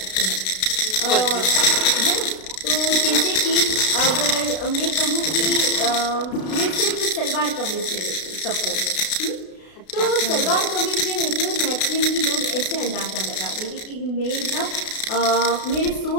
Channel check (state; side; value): late; right; 32 ms